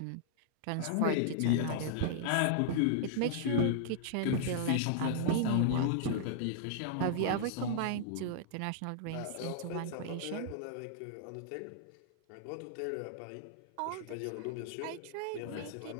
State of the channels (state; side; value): different; both; correlation -0.01